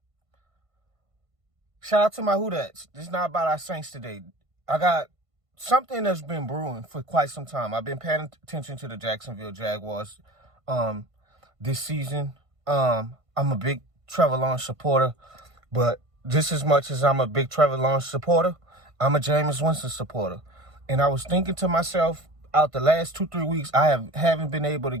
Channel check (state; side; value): late; left; 1.5 ms